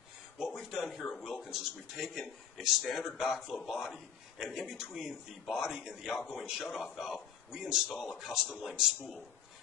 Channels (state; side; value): quieter; right; 8.2 dB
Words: What we've done here at Wilkins is we've taken a standard backflow body, and in between the body and the outgoing shutoff valve, we install a custom length spool.